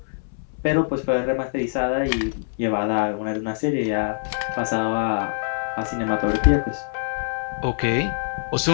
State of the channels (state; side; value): silent; right; 63 dB below the other